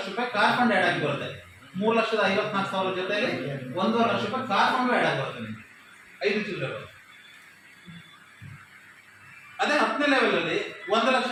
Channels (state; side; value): identical; both; correlation 1.00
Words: ರೂಪಾಯಿ ಕಾರ್ ಫಂಡ್ ಆಡ್ ಆಗಿ ಬರುತ್ತೆ. 3,54,000 ಜೊತೆಲಿ 1.5 ಲಕ್ಷ ರೂಪಾಯಿ ಕಾರ್ ಫಂಡ್ ಆಡ್ ಆಗಿ ಬರುತ್ತೆ ನಿಮಗೆ 5 ಚಿಲ್ಲರೆ. ಅದೇ 10ನೇ ಲೆವೆಲ್ ಅಲ್ಲಿ